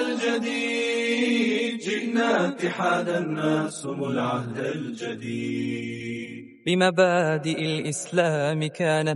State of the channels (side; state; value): both; identical; correlation 1.00